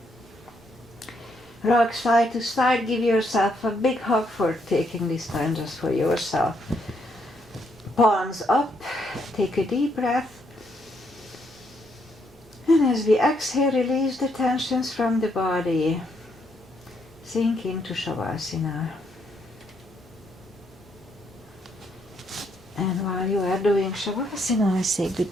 Rock side to side, give yourself a big hug for taking this time just for yourself. Palms up, take a deep breath. And as we exhale, release the tensions from the body. Sink into Shavasana. And while you are doing Shavasana, I say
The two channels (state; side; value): normal; both; correlation 0.74